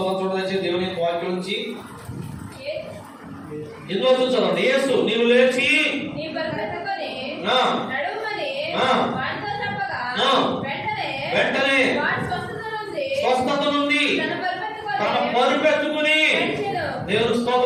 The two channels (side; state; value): both; identical; correlation 1.00